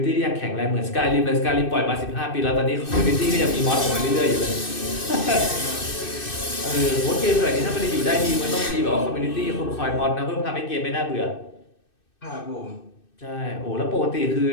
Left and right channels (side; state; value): right; late; 2.6 ms